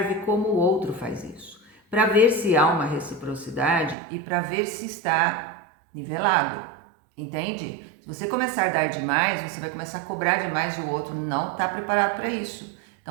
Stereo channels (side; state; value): left; drops out; at 4.0 s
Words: como o outro faz isso, para ver se há uma reciprocidade e para ver se está nivelado, entende? Se você começar a dar demais, você vai começar a cobrar demais e o outro não está preparado para isso.